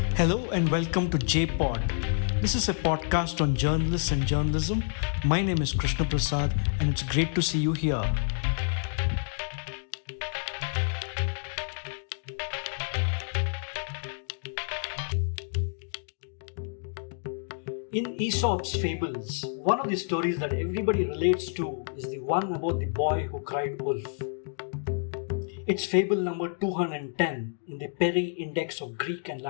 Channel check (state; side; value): silent; right; digital silence